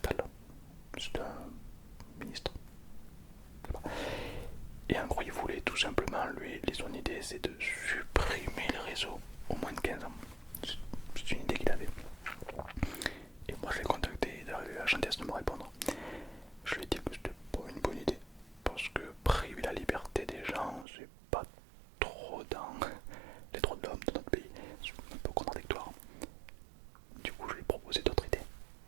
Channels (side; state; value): left; drops out; at 20.9 s